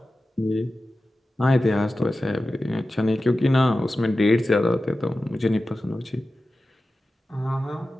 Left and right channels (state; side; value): normal; both; correlation 0.94